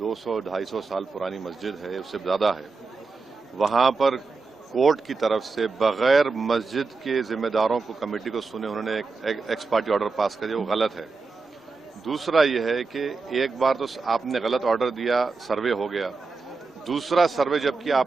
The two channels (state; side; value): quieter; left; 4.2 dB